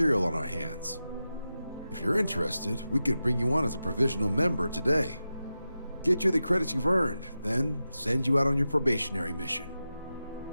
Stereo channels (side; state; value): both; inverted; correlation -0.92